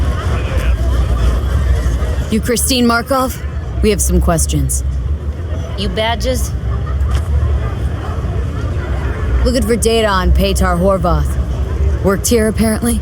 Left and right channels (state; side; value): identical; both; correlation 1.00